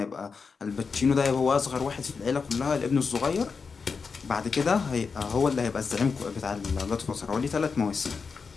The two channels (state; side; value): quieter; right; 5.2 dB